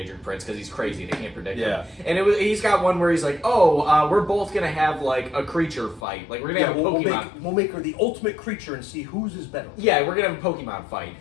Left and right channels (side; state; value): right; drops out; at 6.0 s